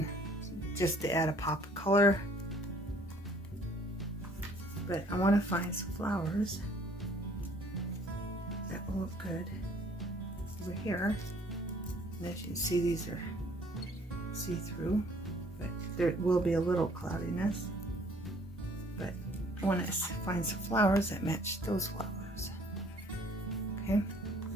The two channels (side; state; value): both; normal; correlation 0.58